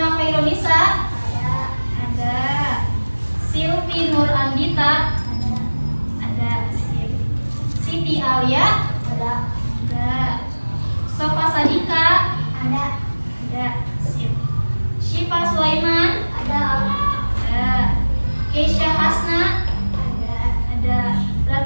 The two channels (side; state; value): both; inverted; correlation -1.00